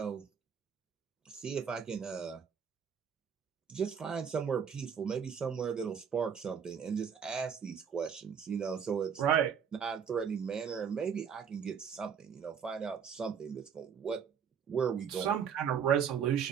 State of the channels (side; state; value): left; quieter; 7.3 dB